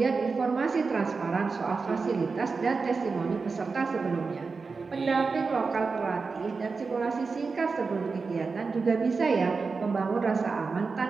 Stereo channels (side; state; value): left; quieter; 4.6 dB